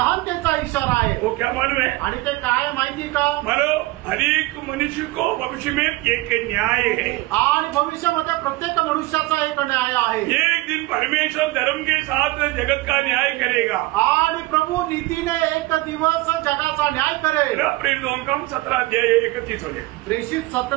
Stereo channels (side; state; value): left; quieter; 20.1 dB